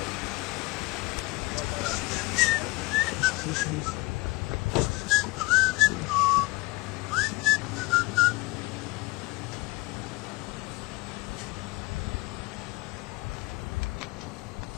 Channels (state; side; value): quieter; right; 22.8 dB